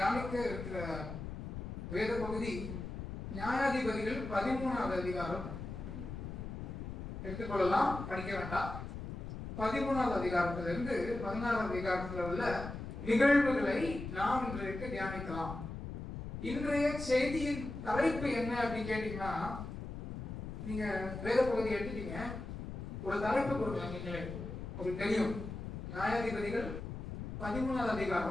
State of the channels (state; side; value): noise; left; rumble, 8 dB below the sound